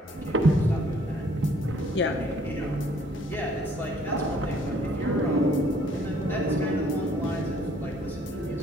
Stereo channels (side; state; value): both; normal; correlation 0.61